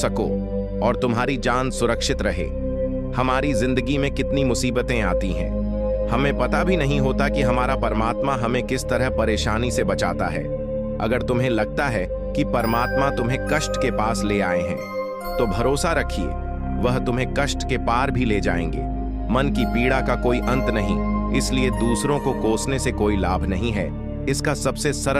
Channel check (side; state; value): both; identical; correlation 1.00